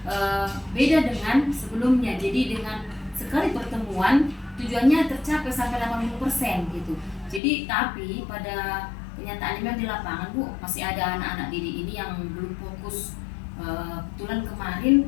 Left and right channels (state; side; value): drops out; right; at 7.4 s